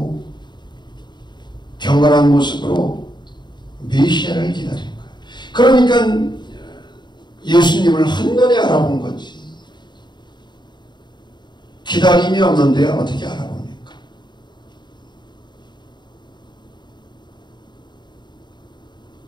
경건한 모습으로 메시아를 기다린 거예요. 그러니까 예수님을 한눈에 알아본 거지. 기다림이 없는데 어떻게 알아봅니까?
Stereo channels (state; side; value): late; right; 0.21 ms